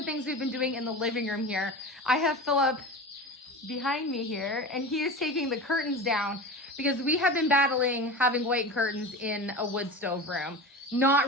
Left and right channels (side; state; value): both; normal; correlation 0.29